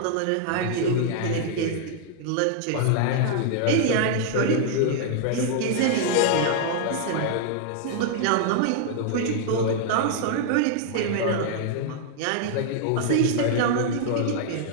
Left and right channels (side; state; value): both; different; correlation -0.01